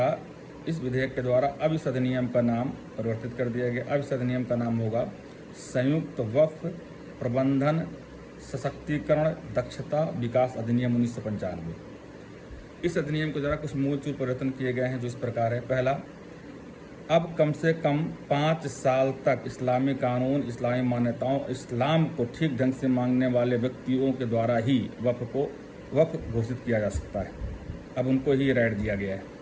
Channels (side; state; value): both; identical; correlation 1.00